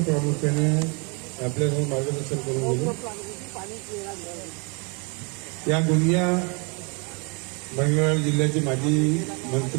प्रामुख्याने आपल्यासमोर मार्गदर्शन करून गेले या गोंदिया मंगळवेढा जिल्ह्याचे माजी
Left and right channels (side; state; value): left; quieter; 33.0 dB